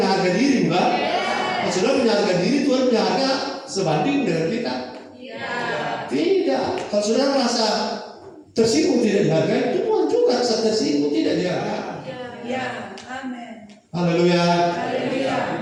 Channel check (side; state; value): both; identical; correlation 1.00